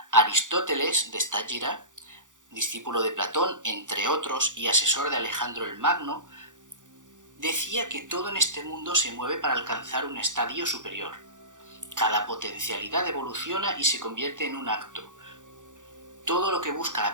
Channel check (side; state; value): left; late; 0.87 ms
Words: Aristóteles de Stagira, discípulo de Platón, entre otros, y asesor de Alejandro el Magno, decía que todo en este mundo se mueve para alcanzar un estadio superior. Cada potencialidad evoluciona y se convierte en un acto. Todo lo que busca la